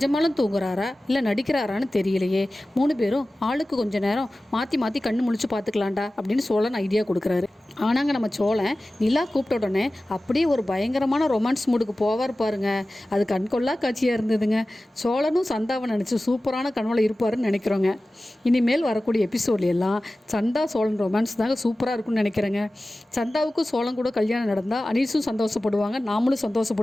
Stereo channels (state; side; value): normal; both; correlation 0.96